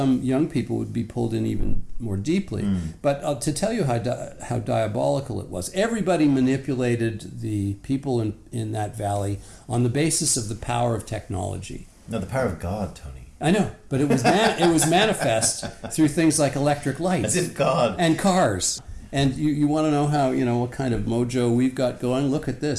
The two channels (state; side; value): identical; both; correlation 1.00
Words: young people would be pulled in even more deeply. But to tell you how diabolical it was, everybody manipulated the people in that valley on the basis of the power of technology. No, the power of God, Tony. I know, but it was manifest through things like electric lights, as if God, and cars. And you want to know how, what kind of mojo we've got going? Look at